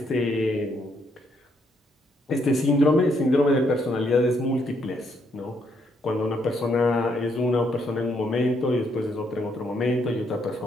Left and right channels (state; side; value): normal; both; correlation 0.73